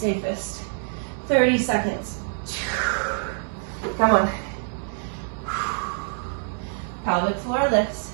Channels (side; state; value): left; silent; digital silence